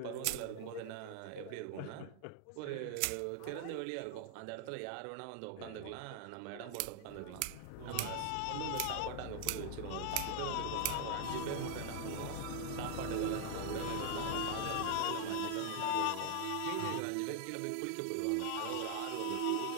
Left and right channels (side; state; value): both; different; correlation 0.00